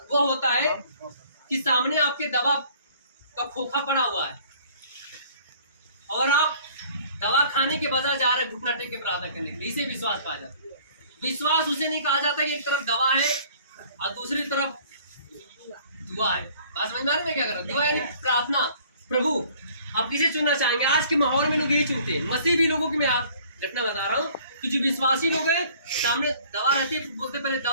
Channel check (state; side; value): inverted; both; correlation -0.54